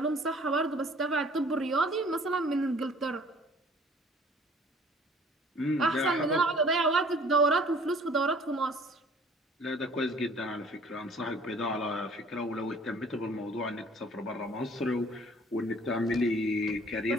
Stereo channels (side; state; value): both; normal; correlation 0.53